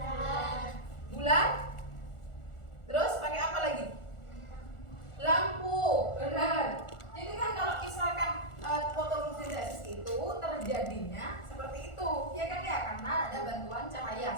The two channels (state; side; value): late; right; 1.4 ms